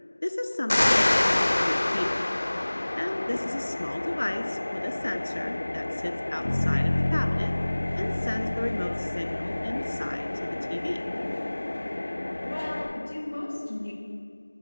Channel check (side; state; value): both; inverted; correlation -1.00